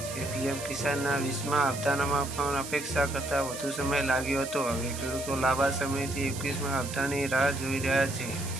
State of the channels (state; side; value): noise; right; hiss, 10 dB below the sound